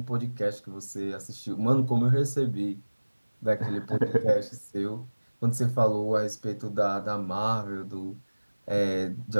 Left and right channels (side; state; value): both; inverted; correlation -1.00